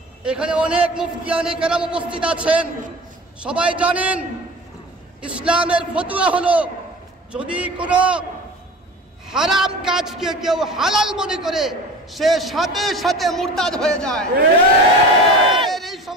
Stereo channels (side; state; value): both; normal; correlation 0.36